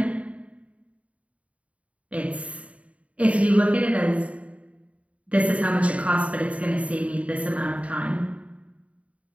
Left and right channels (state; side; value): late; left; 0.065 ms